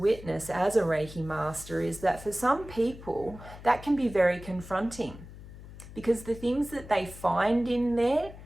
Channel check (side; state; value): left; noise; hum, 16 dB below the sound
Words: as a Reiki master is that for some people, that can be very confronting, because the things that they find in there